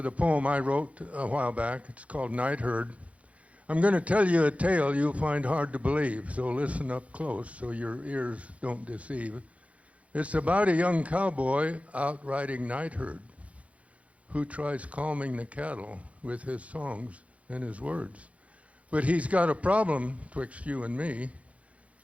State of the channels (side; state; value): left; late; 0.065 ms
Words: a poem I wrote a while back. It's called Night Herd. I'm going to tell you a tale you'll find hard to believe, so listen up close so your ears don't deceive. It's about a young cowboy out riding night herd who tries calming the cattle with his songs and his words. But he's got a problem twixt you and me.